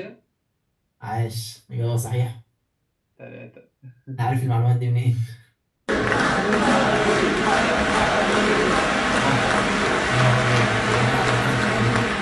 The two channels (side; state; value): both; identical; correlation 1.00